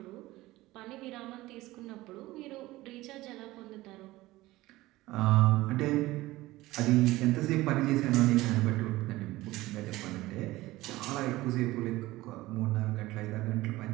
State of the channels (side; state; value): left; quieter; 18.2 dB